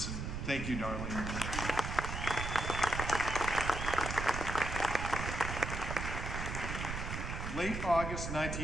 Thank you, Darlene. Late August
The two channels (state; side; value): noise; right; rumble, 4 dB below the sound